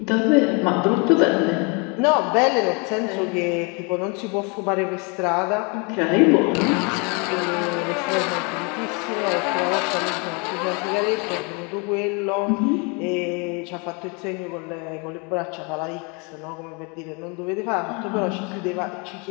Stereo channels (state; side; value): quieter; right; 32.2 dB